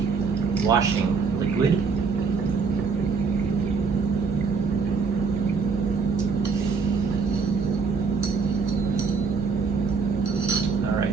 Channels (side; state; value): left; quieter; 5.0 dB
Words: washing liquid. All